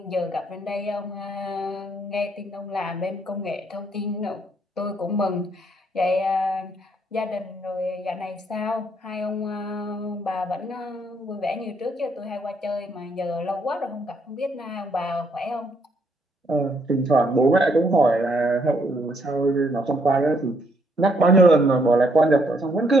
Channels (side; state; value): both; normal; correlation 0.71